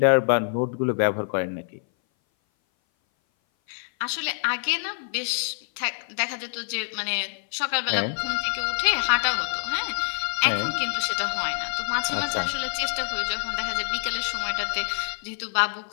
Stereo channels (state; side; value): silent; right; 58 dB below the other